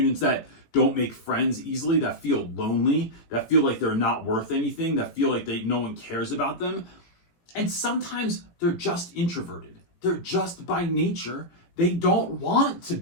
that don't make friends easily, that feel lonely, that feel like they're not worth anything, that feel like no one cares about them. And sometimes they're just introverted. They're just by nature, they don't want to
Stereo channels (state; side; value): late; right; 18 ms